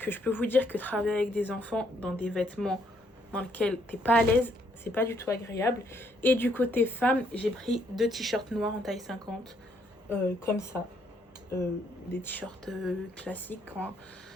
je peux vous dire que travailler avec des enfants dans des vêtements dans lesquels t'es pas à l'aise, c'est pas du tout agréable. Et du côté femme, j'ai pris 2 t-shirts noirs en taille 50, comme ça, des t-shirts classiques, hein.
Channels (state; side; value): normal; both; correlation 0.70